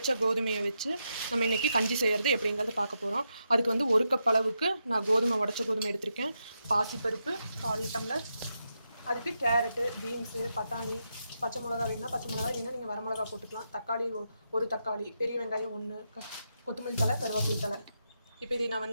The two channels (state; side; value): inverted; both; correlation -0.84